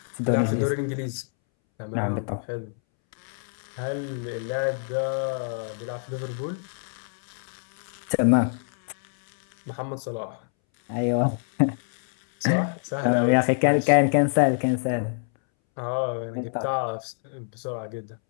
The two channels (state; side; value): silent; right; 61 dB below the other